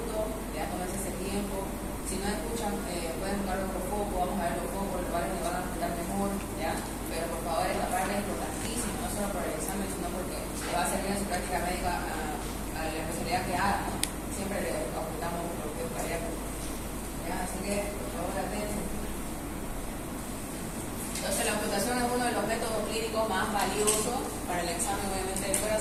ya tomarse ese tiempo. Si no escuchan, pueden buscar otro foco, vamos a ver los focos, los cuales les van a explicar mejor, ¿ya? Pero por favor, esta parte es importantísima, no solo por el examen, sino porque le va a servir en su práctica médica a la especialidad que haga, ¿no? Siempre le ocultamos los bloqueos cardíacos, ¿ya? Así que, por favor, atención. Entonces, la ocultación es uno de los métodos clínicos más valiosos para el examen, obviamente, del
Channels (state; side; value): identical; both; correlation 1.00